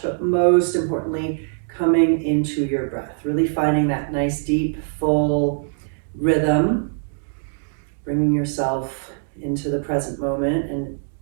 but most importantly, coming into your breath, really finding that nice deep full rhythm, bringing yourself into the present moment and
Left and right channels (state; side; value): silent; left; digital silence